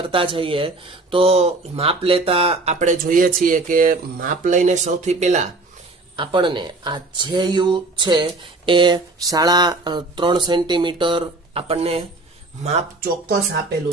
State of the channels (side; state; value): left; quieter; 3.1 dB